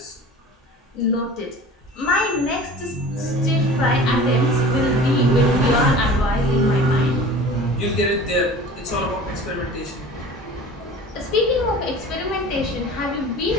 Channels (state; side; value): normal; both; correlation 0.41